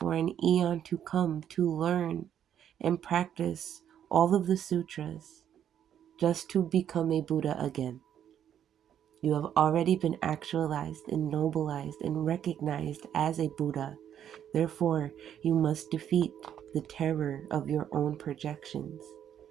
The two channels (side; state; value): left; quieter; 9.7 dB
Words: an eon to come to learn and practice all of the sutras just to become a Buddha again. You have already been actualized and nobilized and recognized as a Buddha. Therefore, you must defeat the terror of your own projections.